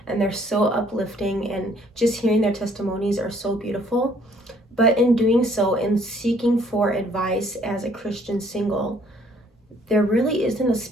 and they're so uplifting, and just hearing their testimonies are so beautiful. But in doing so, in seeking for advice as a Christian single, there really isn't a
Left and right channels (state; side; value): normal; both; correlation 0.62